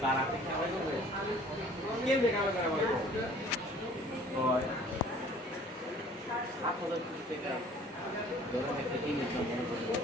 তারা কেন দেখা পাই 7,000 টাকা ধরেন একটা কিনে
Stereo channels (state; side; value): normal; both; correlation 0.51